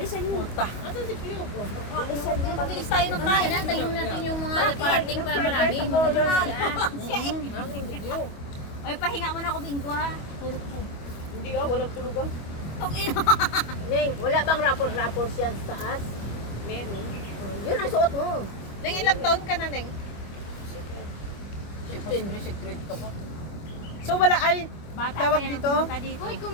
mo. Puta. Asan si Q? Bilis tayo ng kaya na, tayo natin yung mga parating para marami. Asan si Q? Ay, pahinga mo na ako, Bingo ha. Hindi walang tulog ah. Ning, wala bang rapor yan sa taas? Meron. Yun ang suot mo. Neng, ilang taon ka na, Neng? natin. Secret ko pa. So wala ay Bata tawag pa yan, dito? pumunta dito. Uy,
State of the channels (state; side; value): late; right; 24 ms